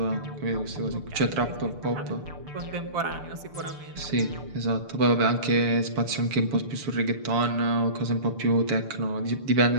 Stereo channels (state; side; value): late; left; 6.8 ms